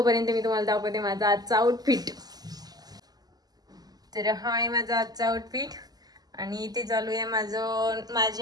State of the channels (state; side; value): late; left; 0.19 ms